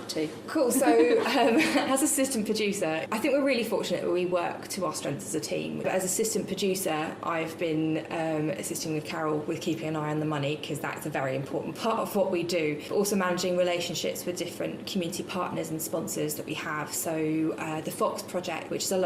to? Cool. So as assistant producer, I think we're really fortunate that we work to our strengths as a team. But as assistant producer, I've been assisting with Carol with keeping an eye on the money, because that's a very important part of what we do. But also managing relationships with different community partners and sponsors that we have. So the Fox Project, which is a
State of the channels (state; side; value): identical; both; correlation 1.00